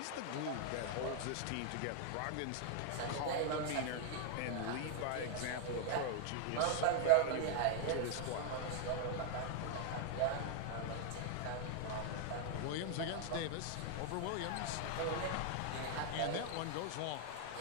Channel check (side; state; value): both; different; correlation 0.00